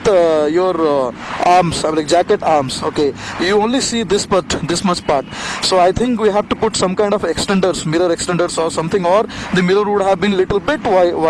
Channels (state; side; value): identical; both; correlation 1.00